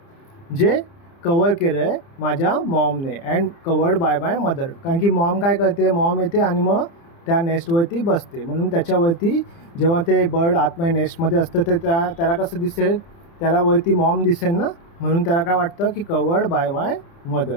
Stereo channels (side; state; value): right; late; 30 ms